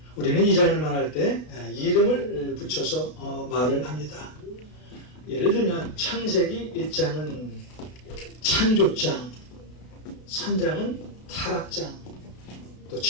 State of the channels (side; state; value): right; late; 32 ms